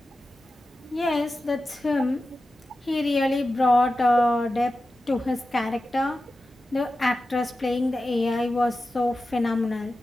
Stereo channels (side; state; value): both; normal; correlation 0.93